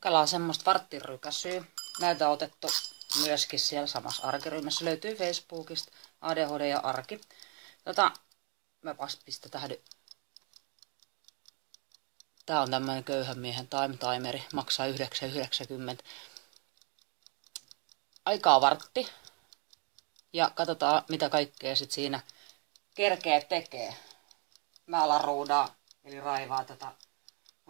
Kokkelaa semmoista varttirykäsyä. Näitä on otettu myöskin siellä samassa arkiryhmässä. Löytyy Facebookista ADHD ja arki. Mä pistetään. Tää on tämmönen köyhän miehen time timeri. Maksaa 9,90. Aikaa vartti. Ja katsotaan mitä kaikkea sit siinä kerkee tekee. Mä alan ruudaa, eli raivaa tätä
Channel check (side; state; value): left; quieter; 36.6 dB